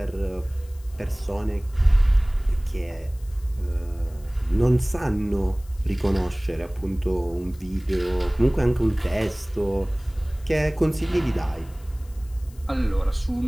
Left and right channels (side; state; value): left; noise; hiss, 26 dB below the sound